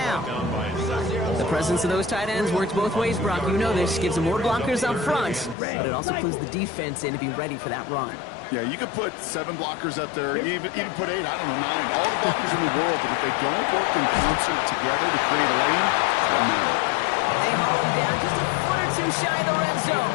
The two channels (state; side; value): drops out; right; at 5.6 s